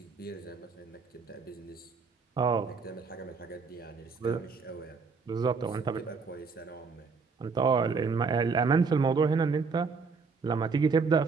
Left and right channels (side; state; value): left; quieter; 4.9 dB